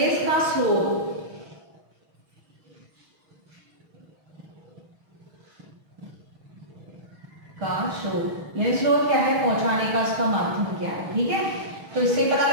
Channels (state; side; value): late; left; 6.3 ms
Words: का स्रोत, का स्रोत, यानी स्रोत क्या है? पहुंचाने का उसका माध्यम क्या है। ठीक है। तो इससे पता